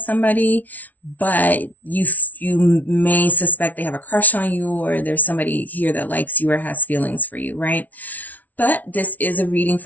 somebody, but you may suspect they have a crush on you, or there's somebody here that likes you or has feelings for you, right? But this is a reading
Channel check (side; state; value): right; late; 0.076 ms